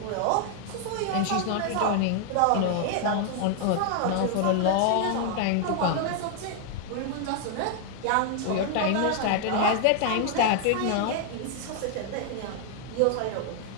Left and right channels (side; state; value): both; different; correlation 0.00